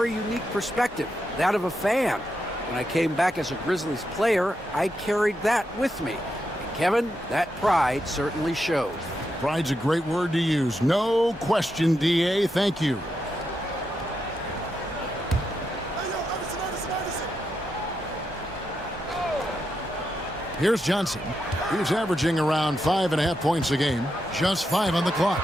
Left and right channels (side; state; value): both; normal; correlation 0.84